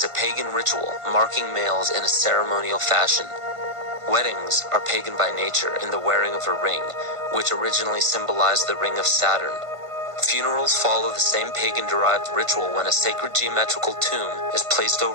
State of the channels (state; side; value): late; left; 1.5 ms